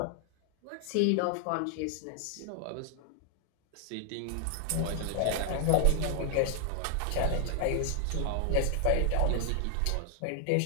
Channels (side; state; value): both; different; correlation 0.00